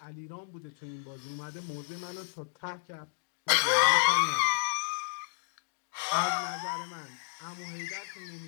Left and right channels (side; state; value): right; silent; digital silence